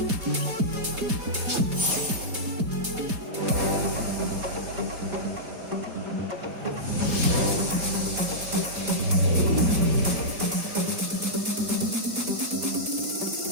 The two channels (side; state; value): left; late; 4.6 ms